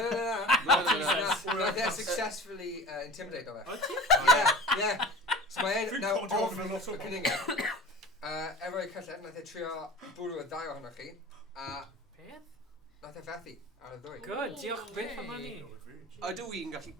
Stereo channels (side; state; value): both; normal; correlation 0.38